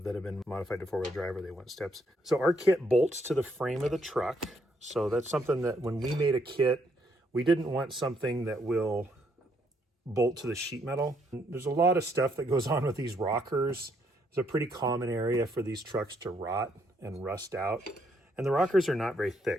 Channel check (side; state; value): both; normal; correlation 0.72